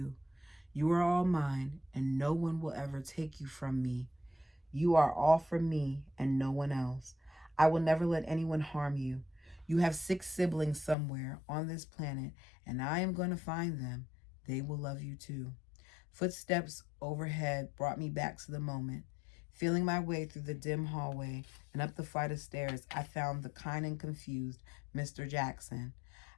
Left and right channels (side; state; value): right; drops out; at 11.0 s